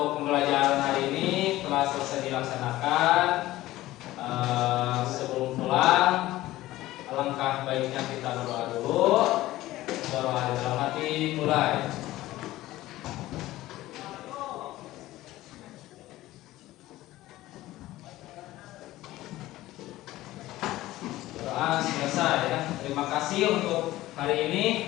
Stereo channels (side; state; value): right; quieter; 16.4 dB